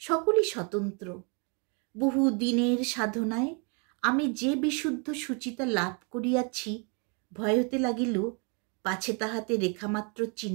সকলই স্বতন্ত্র। বহু দিনের সাধনায় আমি যে বিশুদ্ধ সুচিতা লাভ করিয়াছি, ভয় হতে লাগিল পাছে তাহাতে রেখামাত্র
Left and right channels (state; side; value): quieter; left; 35.3 dB